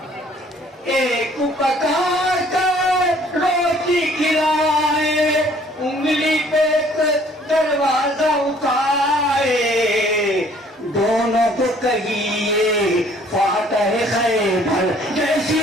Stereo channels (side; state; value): both; normal; correlation 0.58